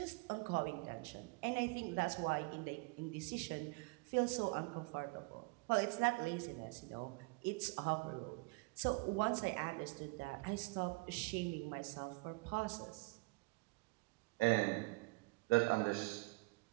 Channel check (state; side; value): quieter; left; 27.1 dB